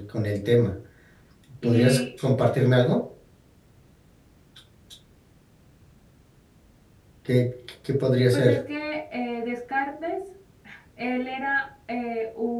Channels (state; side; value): identical; both; correlation 1.00